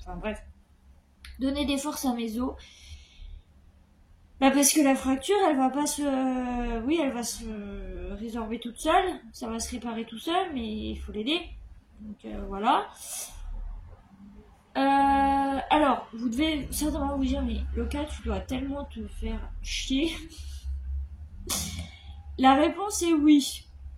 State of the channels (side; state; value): both; identical; correlation 1.00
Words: bref. Donner des forces à mes os. Bah parce que la fracture, elle va pas se. Oui, elle va se résorber toute seule. Ça va se réparer tout seul, mais il faut l'aider. Donc voilà. Alors, vous devez certainement vous dire, mais Loca, tu dois tellement te faire chier. La réponse est oui.